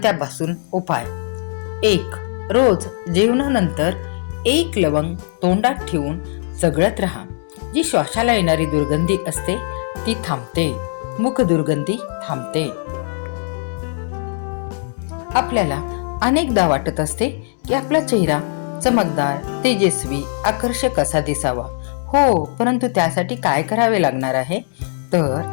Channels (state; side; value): silent; right; digital silence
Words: त्यापासून उपाय. 1. रोज जेवणानंतर 1 लवंग तोंडात ठेवून चगळत राहा. जी श्वासाला येणारी दुर्गंधी असते ती थांबते. मुख दुर्गंधी थांबते. आपल्याला अनेकदा वाटत असते की आपला चेहरा चमकदार, तेजस्वी, आकर्षक असा दिसावा. हो, परंतु त्यासाठी काय करावे लागणार आहे?